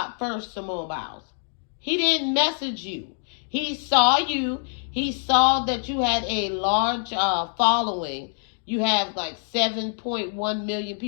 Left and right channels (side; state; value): right; silent; 62 dB below the other